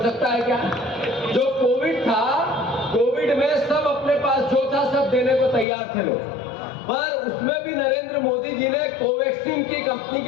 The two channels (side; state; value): right; drops out; at 5.7 s